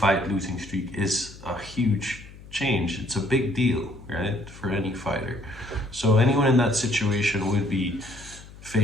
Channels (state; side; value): noise; left; hum, 18 dB below the sound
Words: losing streak is a huge change. It's a big deal, right, for any fighter. So anyone in that situation would be